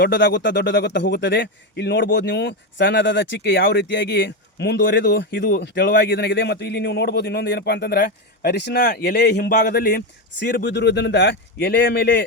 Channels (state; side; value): normal; both; correlation 0.11